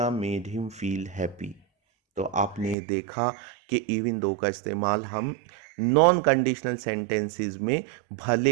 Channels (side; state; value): left; drops out; at 2.8 s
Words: made him feel happy. तो आपने देखा कि इवन दो का इस्तेमाल हम नॉन कंडीशनल सेंटेंसेस में भले